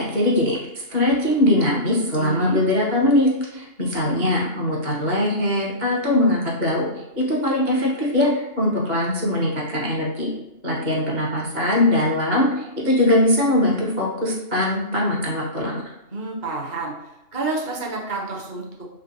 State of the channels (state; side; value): late; right; 2.8 ms